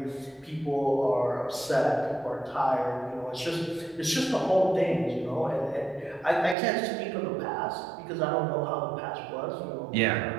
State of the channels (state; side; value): drops out; left; at 6.6 s